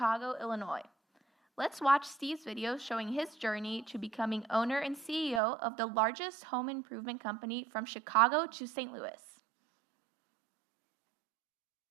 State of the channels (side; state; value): left; drops out; at 5.4 s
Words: Illinois. Let's watch Steve's video showing his journey to becoming owner and CEO of the largest home improvement company from Chicago to St. Louis.